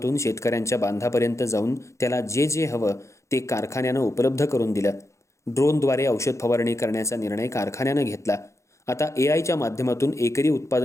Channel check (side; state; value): right; late; 0.14 ms